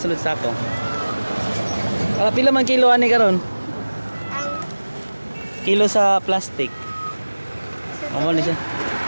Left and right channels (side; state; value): both; inverted; correlation -1.00